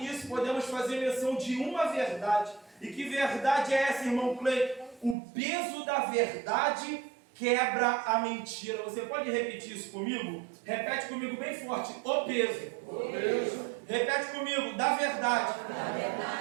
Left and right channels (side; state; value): left; drops out; at 5.2 s